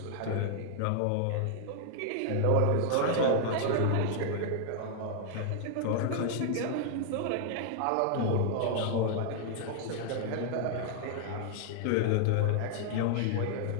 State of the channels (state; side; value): different; both; correlation -0.01